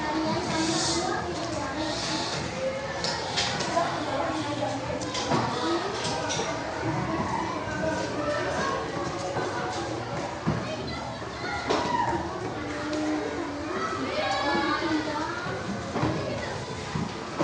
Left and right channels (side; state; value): both; identical; correlation 1.00